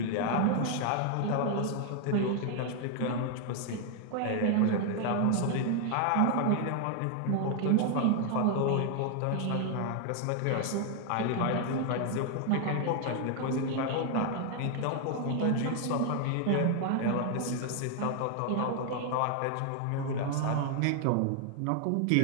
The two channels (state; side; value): different; both; correlation 0.00